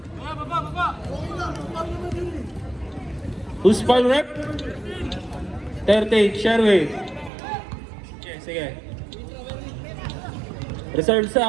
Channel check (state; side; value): drops out; left; at 7.3 s